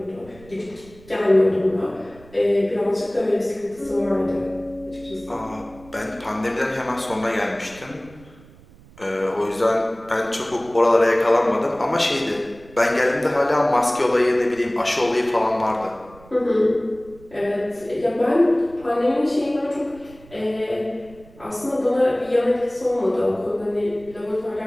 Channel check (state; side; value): noise; right; rumble, 23 dB below the sound